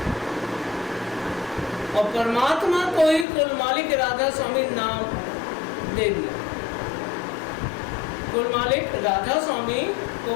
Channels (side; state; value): right; drops out; at 3.2 s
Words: और परमात्मा को ही कुल मालिक राधा स्वामी नाम दे दिया। कुल मालिक राधा स्वामी को